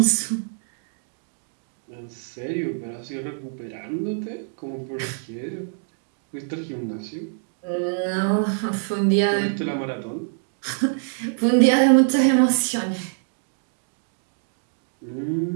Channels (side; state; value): left; silent; digital silence